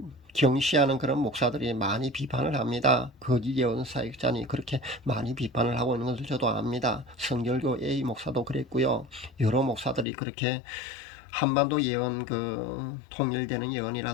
경시하는 그런 목사들이 많이 비판을 합니다. 거짓 예언 사역자니 그렇게 많이 비판을 하고 있는 것을 저도 압니다. 성결교 A 목사도 그랬고요. 여러 목사들이 그렇게 한반도 예언 통일되는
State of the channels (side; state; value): right; drops out; at 10.1 s